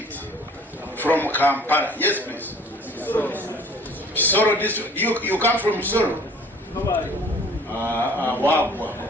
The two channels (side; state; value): both; normal; correlation 0.51